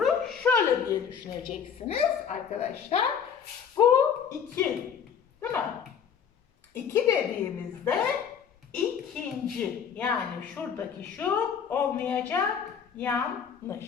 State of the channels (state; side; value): quieter; right; 7.4 dB